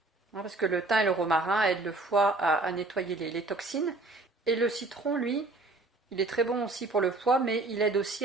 Parce que le thym et le romarin aident le foie à nettoyer les toxines. Et le citron, lui, il est très bon aussi pour le foie, mais il aide aussi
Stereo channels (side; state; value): left; quieter; 3.1 dB